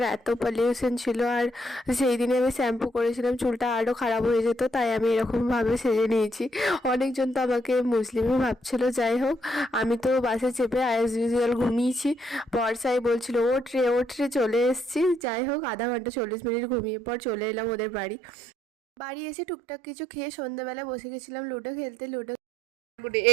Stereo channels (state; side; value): drops out; left; at 15.2 s